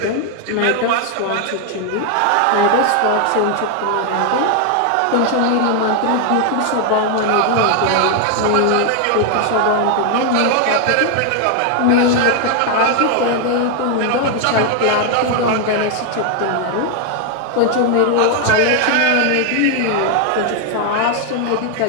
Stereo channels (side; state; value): both; different; correlation 0.00